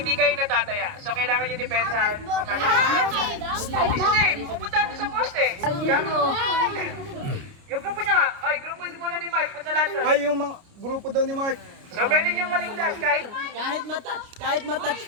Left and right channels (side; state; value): left; late; 29 ms